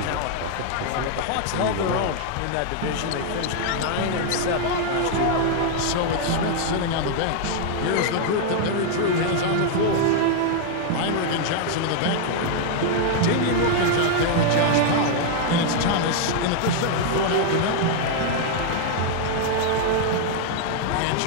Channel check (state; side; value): different; both; correlation 0.00